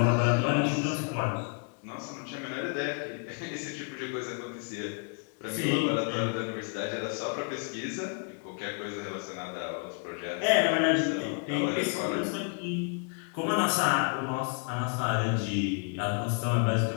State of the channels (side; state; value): right; quieter; 38.0 dB